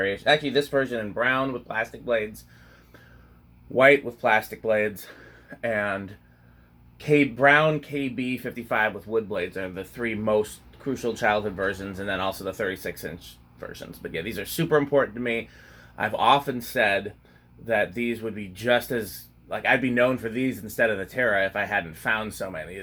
Actually, this version in brown with plastic blades, white with plastic blades, and brown KB-55 with wood blades are the three most crucial childhood versions, and then also the 36-inch versions. But yeah, these are super important to me. I've often said that these would be just as like I'd be known for these instead of the Terra if I hadn't found so many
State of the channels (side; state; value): both; identical; correlation 1.00